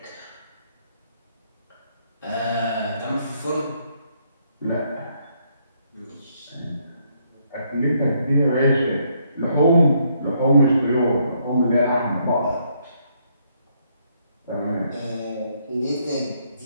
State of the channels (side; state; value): both; inverted; correlation -0.72